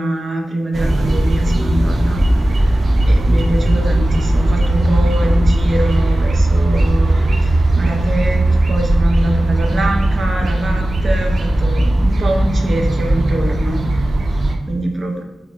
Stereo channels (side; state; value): both; normal; correlation 0.96